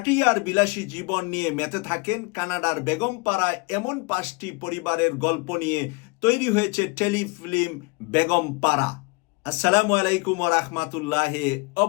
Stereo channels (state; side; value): quieter; right; 28.0 dB